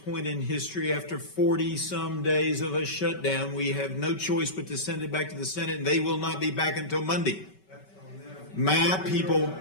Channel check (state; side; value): late; right; 5.2 ms